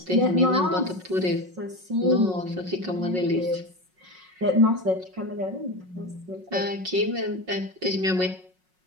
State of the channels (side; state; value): left; late; 5.4 ms